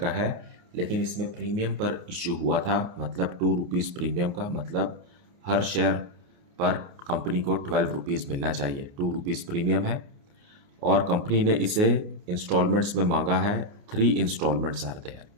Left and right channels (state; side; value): late; left; 29 ms